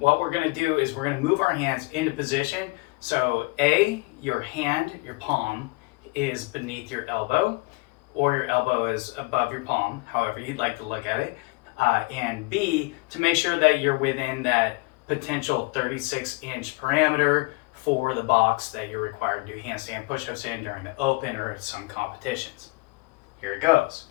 we're going to do is we're going to move our hands into position. So your hand, your palm, is beneath your elbow, or your elbow is above your palm, however you'd like to look at it. And B, to make sure that you're within that potential 36-inch parameter for the box that you're required to do handstand push-ups in during the open or some competitions. Here it goes.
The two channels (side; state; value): right; quieter; 26.8 dB